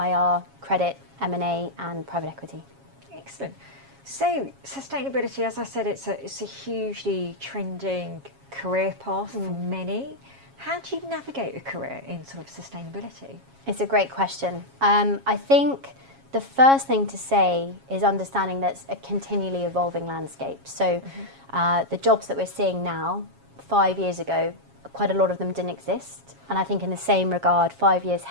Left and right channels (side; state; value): left; late; 7.3 ms